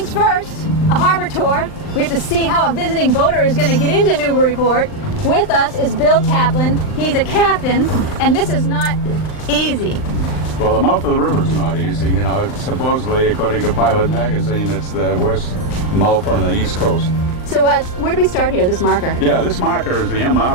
first, a harbor tour. We have to see how a visiting boater is going to get into Newburyport. With us is Bill Taplin. He's a captain, and this is not easy. Well, the mouth of the river is not easy. You know, supposedly, according to Pilot Magazine, it's the worst mouth on the East Coast. So where do we start here, this marker? Yeah, this marker is the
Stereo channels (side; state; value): right; late; 39 ms